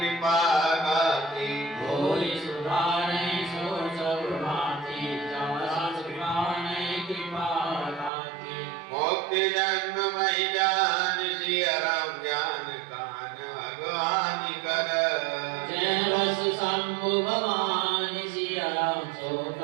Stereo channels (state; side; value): drops out; left; at 8.1 s